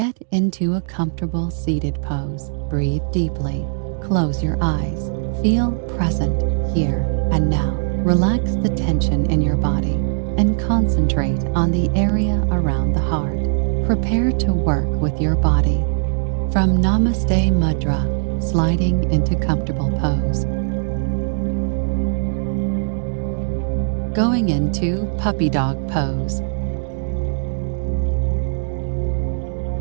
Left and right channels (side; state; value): left; silent; digital silence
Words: into a comfortable seated pose. Breathe deeply. Close your eyes. Feel present here and now. Relax the tension in your body and concentrate on the area around the heart. Prepare to work with your body. From Namaste Mudra, sliding into comfortable pose. Going into puppy dog pose.